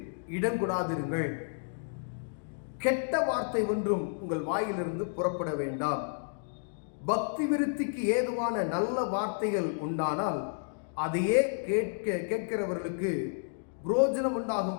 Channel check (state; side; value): silent; right; digital silence